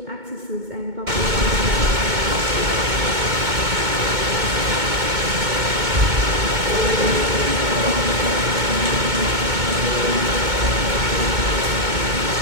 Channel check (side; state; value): left; late; 2.2 ms